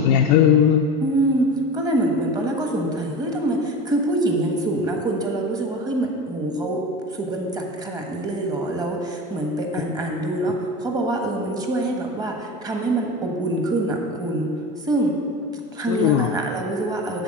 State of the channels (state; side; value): normal; both; correlation 0.29